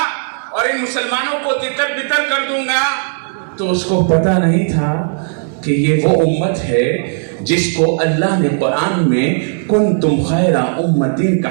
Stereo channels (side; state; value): left; silent; 60 dB below the other